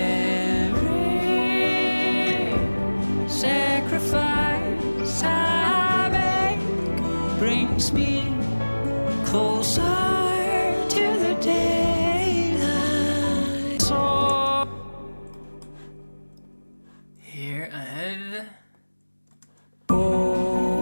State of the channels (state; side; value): inverted; both; correlation -1.00